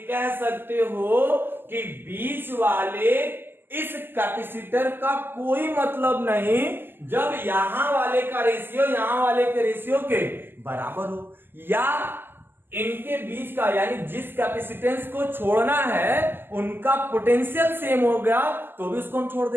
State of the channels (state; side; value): late; left; 0.098 ms